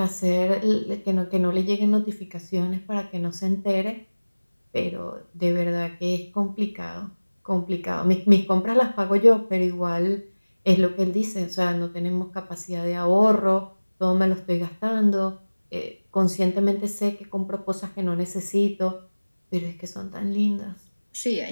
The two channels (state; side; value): inverted; both; correlation -1.00